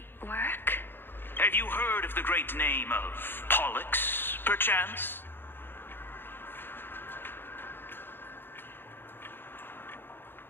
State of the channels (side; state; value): right; late; 0.10 ms